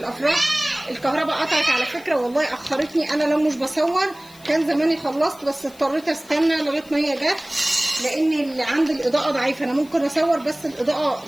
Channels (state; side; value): noise; left; hiss, 24 dB below the sound